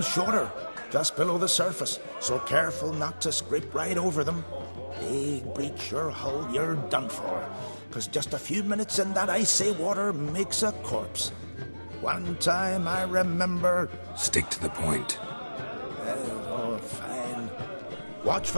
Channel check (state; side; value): inverted; both; correlation -1.00